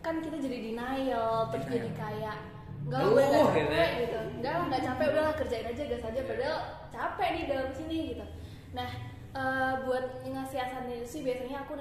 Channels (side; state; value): both; identical; correlation 1.00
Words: kan kita jadi denial, terus jadi kayak nggak capek gitu, nggak capek, udahlah kerjain aja gas aja, padahal capek nih dalam sini gitu. Nah buat ngasiasatin itu sih biasanya aku